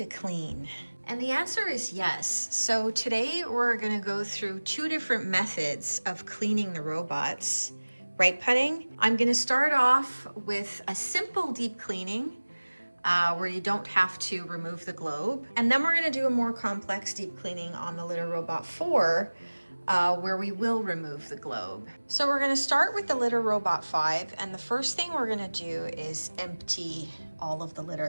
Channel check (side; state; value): both; inverted; correlation -1.00